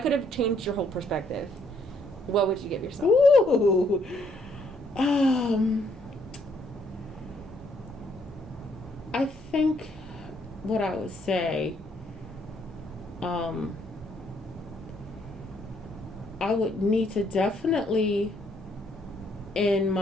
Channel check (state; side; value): normal; both; correlation 0.69